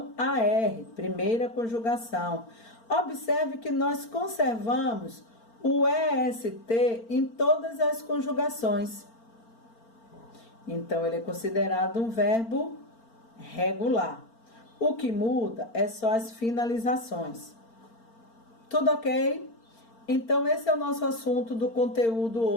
AR, primeira conjugação. Observe que nós conservamos o EST em todas as conjugações. Então, ele é considerado um verbo regular. O que muda é só as finalizações. Tudo ok? Então, esse é o nosso assunto do conteúdo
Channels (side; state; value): right; late; 4.4 ms